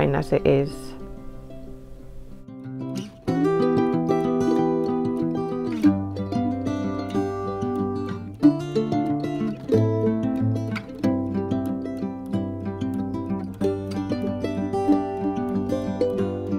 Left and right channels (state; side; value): identical; both; correlation 1.00